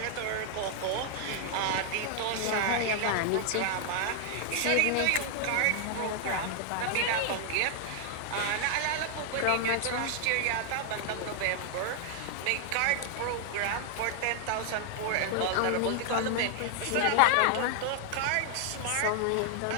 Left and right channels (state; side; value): different; both; correlation 0.00